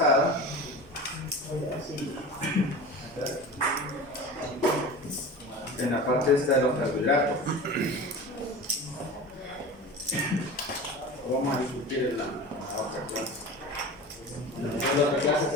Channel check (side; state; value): both; normal; correlation 0.33